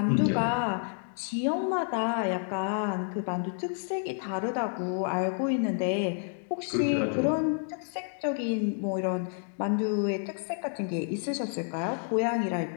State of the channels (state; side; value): silent; right; 58 dB below the other